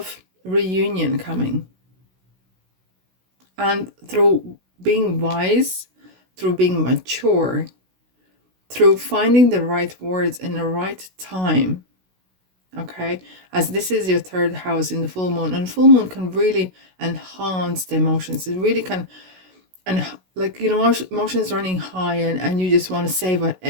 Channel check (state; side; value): late; left; 16 ms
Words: reunion coming. And through being wise, through being mature, through finding the right words in the right time, okay, as this is your third house in the full moon, and full moon can really enhance the emotions. It really can, and like, emotions running high, and you just want to savor